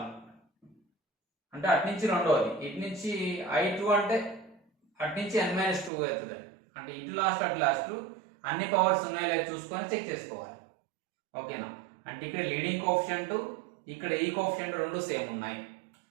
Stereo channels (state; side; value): drops out; left; at 5.9 s